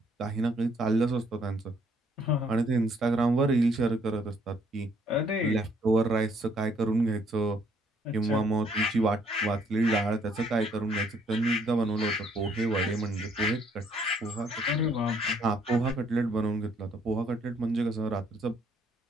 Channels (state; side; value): normal; both; correlation 0.66